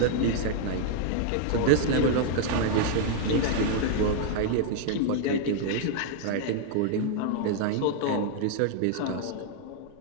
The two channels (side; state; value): both; different; correlation 0.00